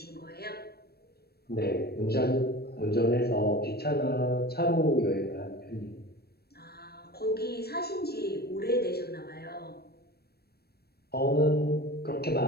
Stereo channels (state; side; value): late; right; 0.46 ms